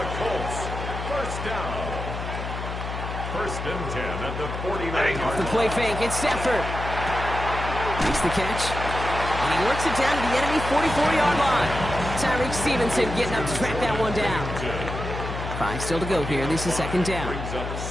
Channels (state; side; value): noise; left; hum, 6 dB below the sound